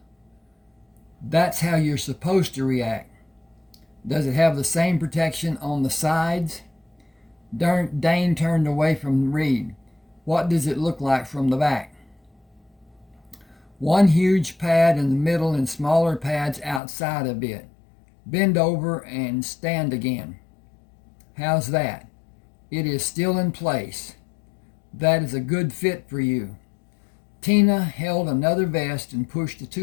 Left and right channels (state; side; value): drops out; right; at 16.8 s